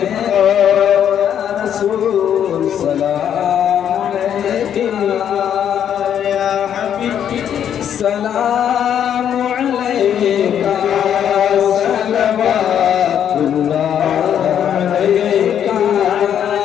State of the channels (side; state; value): right; quieter; 9.3 dB